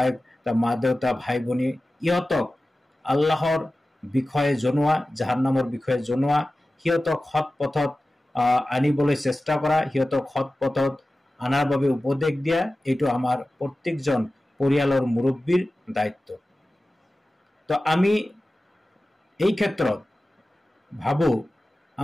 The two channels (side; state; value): both; normal; correlation 0.95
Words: তাৰ মা দেউতা, ভাই ভনী, ইহঁতক আল্লাহৰ বিষয়ে জনোৱা, জাহান্নামৰ বিষয়ে জনোৱা, সিহঁতক সৎ পথত আনিবলৈ চেষ্টা কৰা, সিহঁতক সৎ পথত আনাৰ বাবে উপদেশ দিয়া, এইটো আমাৰ প্ৰত্যেকজন পৰিয়ালৰ মুৰব্বীৰ দায়িত্ব। তো আমি এই ক্ষেত্ৰত ভাবোঁ